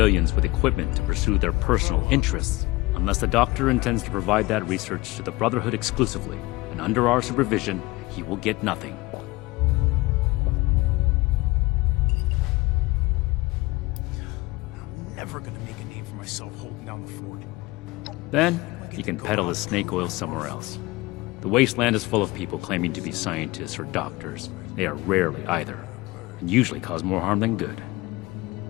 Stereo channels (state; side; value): quieter; right; 21.3 dB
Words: with equipment to pursue their personal interests, unless the Doctor intends to provide that research to the Brotherhood exclusively, and under our supervision, he will get nothing. I'm never gonna make a name for myself holding down the fort. Then, he can peddle his snake oil somewhere else. The wasteland is full of people claiming to be scientists or doctors. They are rarely either, and usually cause more harm than good.